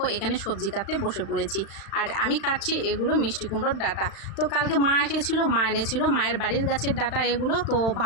এখানে সবজি কাটতে বসে পড়েছি। আর আমি কাটছি এগুলো মিষ্টি কুমড়োর ডাঁটা। তো কালকে মা এসেছিলো, মা এনেছিল মায়ের বাড়ির গাছের ডাঁটা এগুলো। তো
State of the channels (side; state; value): right; late; 36 ms